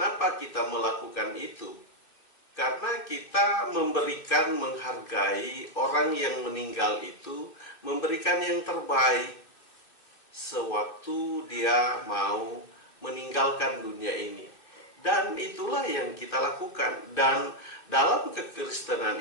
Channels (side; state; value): right; late; 2.6 ms